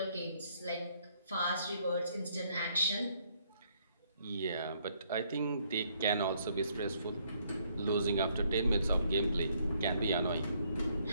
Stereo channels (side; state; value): both; inverted; correlation -0.69